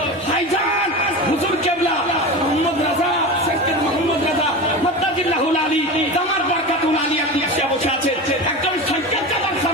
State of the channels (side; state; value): both; normal; correlation 0.27